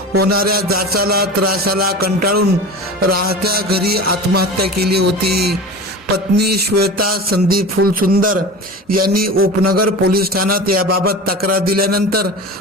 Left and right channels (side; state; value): both; normal; correlation 0.32